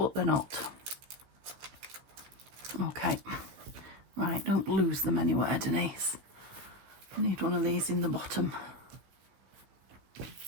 they're not. Okay. Right, don't lose them anywhere, Denise. I need one of these in the bottom.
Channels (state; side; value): late; left; 16 ms